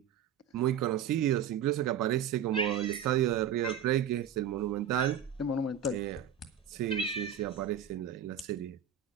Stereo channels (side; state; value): left; quieter; 8.8 dB